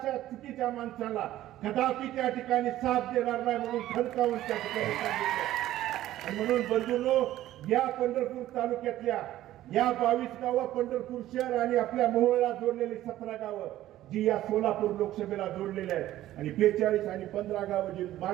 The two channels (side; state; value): left; quieter; 14.1 dB